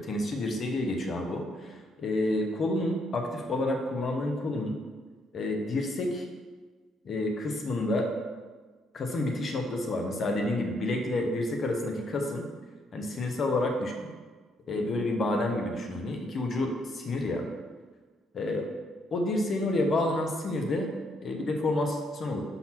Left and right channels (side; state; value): both; normal; correlation 0.73